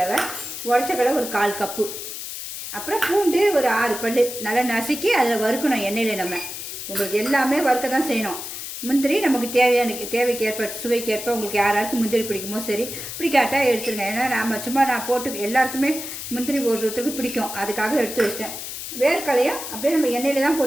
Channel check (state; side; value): noise; left; hiss, 8 dB below the sound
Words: உடச்சக்கடலை ஒரு 1/4 கப்பு, அப்புறம் பூண்டு ஒரு 6 பல் நல்லா நசுக்கி அதில் வறுக்கணும் எண்ணெயில். நம்ம உங்களுக்கு எல்லாமே வறுக்க தான் செய்யணும். முந்திரி நமக்கு தேவைக்கு ஏற்ப சுவைக்கு ஏற்ப உங்களுக்கு யாராருக்கு முந்திரி பிடிக்குமோ சரி, பிடிக்காட்டால் எடுத்துருங்க. ஏன்னா நான் போட்டு எல்லாருக்குமே முந்திரி ஒருத்தருக்கு பிடிக்கும், அதுக்காக எடுத்து வச்சிட்டேன். வேர்க்கலையும் அப்படியே நம்ம எண்ணெயில் தான்